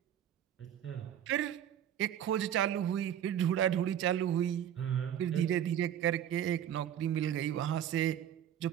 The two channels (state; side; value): quieter; left; 10.3 dB